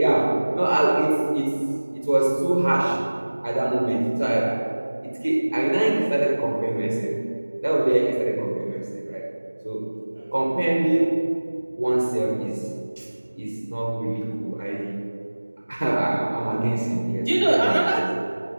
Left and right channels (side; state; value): both; inverted; correlation -1.00